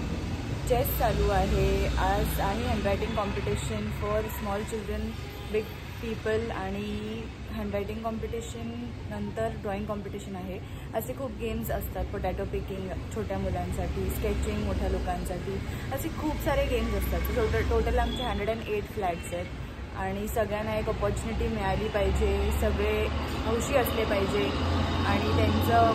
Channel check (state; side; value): identical; both; correlation 1.00